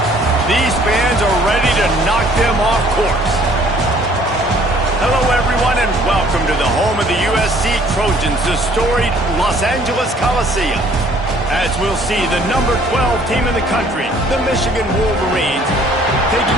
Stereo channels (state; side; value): normal; both; correlation 0.58